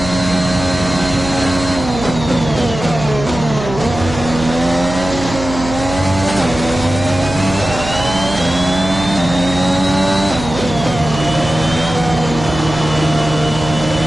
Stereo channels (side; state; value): right; noise; hum, 9 dB below the sound